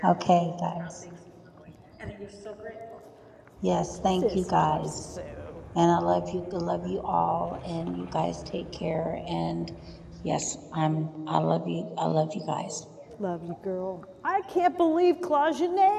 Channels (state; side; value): identical; both; correlation 1.00